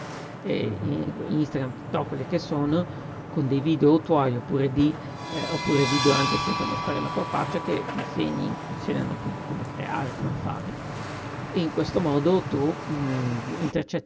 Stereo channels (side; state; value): both; identical; correlation 1.00